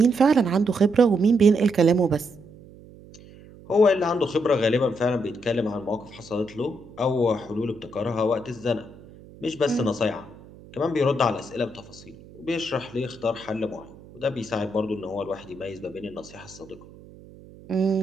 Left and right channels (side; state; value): right; noise; hum, 21 dB below the sound